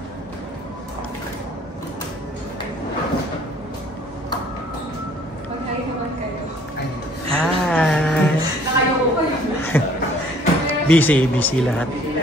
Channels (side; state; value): both; normal; correlation 0.57